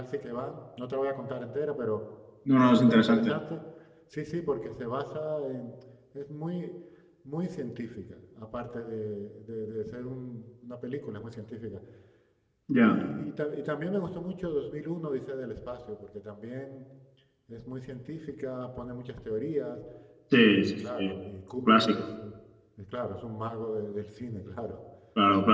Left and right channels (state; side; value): identical; both; correlation 1.00